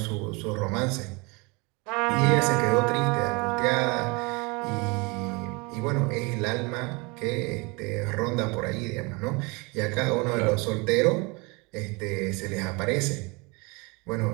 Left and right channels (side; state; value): left; quieter; 27.9 dB